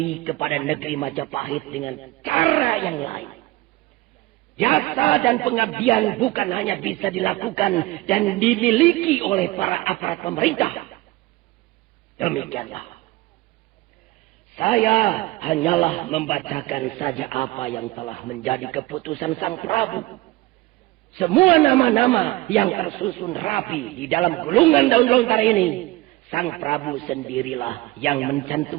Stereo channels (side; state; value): left; quieter; 19.5 dB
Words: kepada negeri Majapahit dengan cara yang lain. Jasa dan pengabdian bukan hanya bisa dilakukan dan dimiliki oleh para aparat pemerintah. Demikianlah. Saya hanyalah membacakan saja apa yang telah menjadi keputusan Sang Prabu. Semua nama-nama yang tersusun rapi di dalam gulungan daun lontar ini, Sang Prabu sendirilah yang